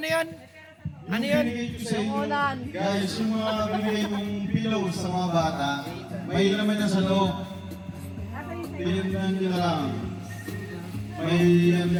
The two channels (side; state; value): both; identical; correlation 1.00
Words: yun? Binigay ko sa inyo, Ulan. guys, yung mga binigay mong pillows sa mga bata, may laman yan sa loob. Pinagyan nyo na lang. May yan